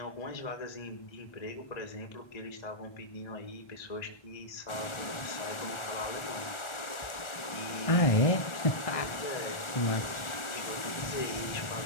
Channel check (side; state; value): right; late; 1.4 ms